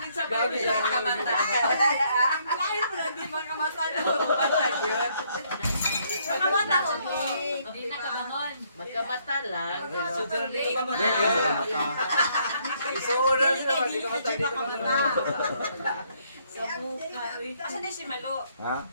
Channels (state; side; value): inverted; both; correlation -0.69